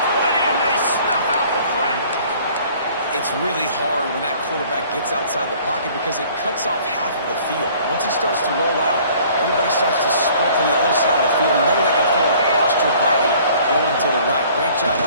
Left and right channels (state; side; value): inverted; both; correlation -0.54